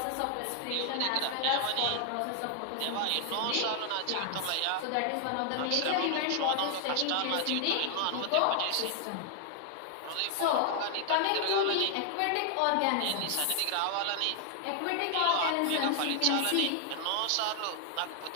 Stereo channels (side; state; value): both; different; correlation 0.00